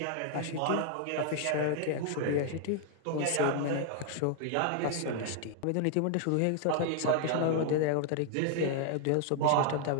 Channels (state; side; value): different; both; correlation 0.00